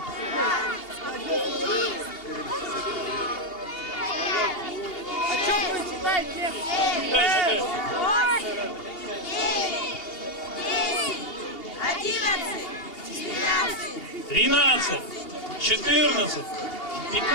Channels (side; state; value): right; late; 2.8 ms